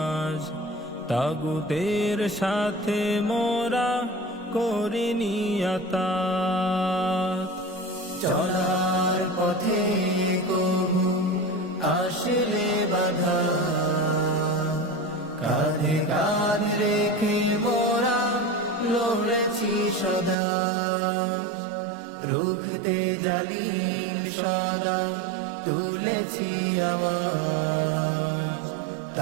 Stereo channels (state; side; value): drops out; left; at 20.4 s